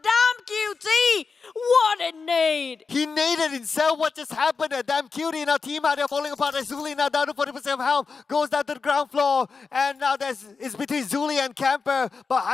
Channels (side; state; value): right; quieter; 4.8 dB